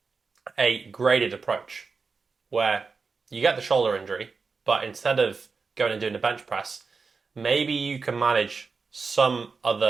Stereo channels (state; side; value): quieter; left; 4.7 dB